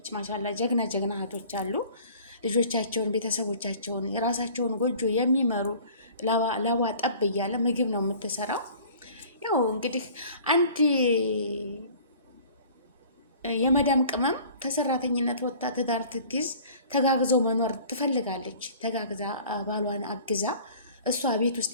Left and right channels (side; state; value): both; inverted; correlation -0.48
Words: ማሻላ ጀግና እህቶች አሉ። ልጆቻቸውን፣ ቤተሰቦቻቸውን፣ የራሳቸውን ጎጆ የሚመሩ ላባ ጠብ እያለ ምግብ ነው የምትሰራው። ያው እንግዲህ አንድ የመዳም ቅመም ከሰራተኝነት ወጥታ ትዳር ትግዝ ተጋግዘው መኖር ትፈልጋለች። ተጋግዛ ባሏን አግዛ እሷ ቤት ውስጥ